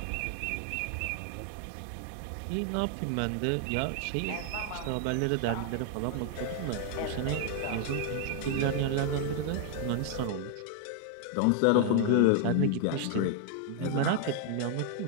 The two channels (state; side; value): different; both; correlation 0.00